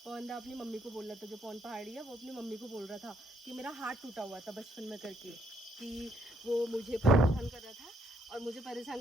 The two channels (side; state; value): both; normal; correlation 0.71